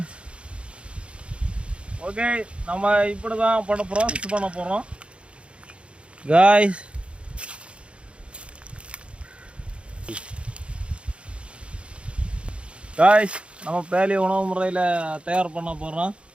okay. நம்ம இப்படி தான் ப்ராசஸ் பண்ண போகிறோம் காய்ஸ். காய்ஸ், நம்ம பேலியோ உணவு முறையில் தயார் பண்ண போகிறோம்.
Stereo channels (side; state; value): left; late; 0.058 ms